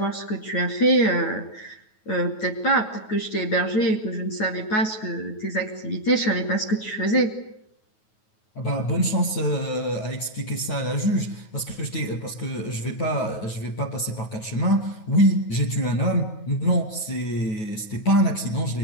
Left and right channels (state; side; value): late; right; 9.3 ms